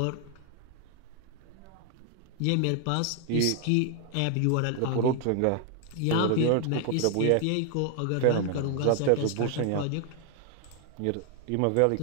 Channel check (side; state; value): both; different; correlation 0.00